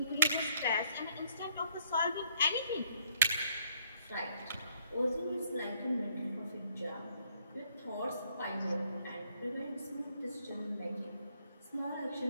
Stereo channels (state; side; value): inverted; both; correlation -0.66